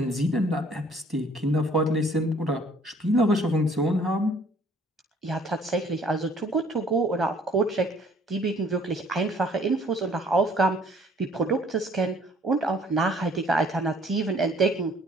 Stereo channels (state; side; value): normal; both; correlation 0.58